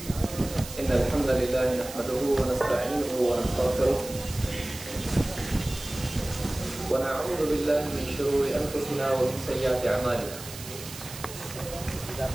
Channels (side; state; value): right; noise; hiss, 13 dB below the sound